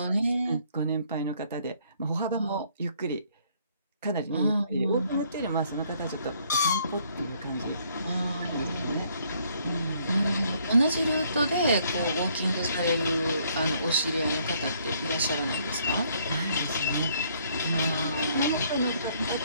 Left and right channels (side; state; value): both; inverted; correlation -0.66